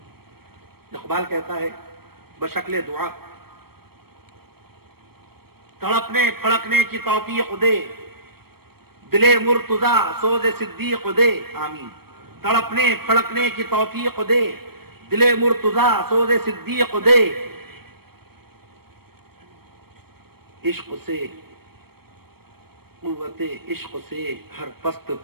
اقبال کہتا ہے بشکل دعا تڑپنے پھڑکنے کی توفیق دے. دل مرتضی سوز صدیق دے. آمین. تڑپنے پھڑکنے کی توفیق دے. دل مرتضی سوز صدیق دے. عشق سے قوت عشق سے ہر پست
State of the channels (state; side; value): late; left; 0.95 ms